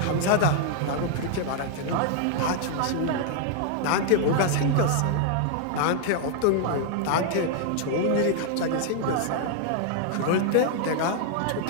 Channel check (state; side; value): different; both; correlation 0.00